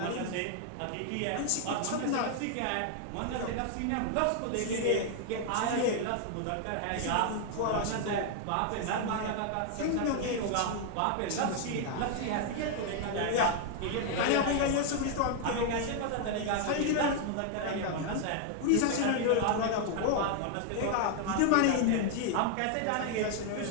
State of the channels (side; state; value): both; different; correlation 0.00